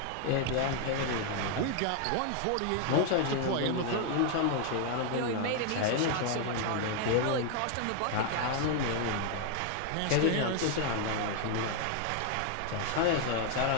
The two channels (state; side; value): different; both; correlation 0.00